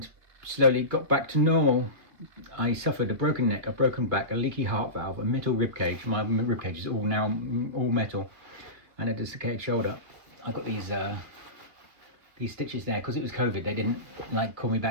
slowly got back to normal. I suffered a broken neck, a broken back, a leaky heart valve, a metal rib cage. My rib cage is all metal, and a desiccated shoulder. I got these stitches there because it was COVID. They didn't call me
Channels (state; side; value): late; left; 2.2 ms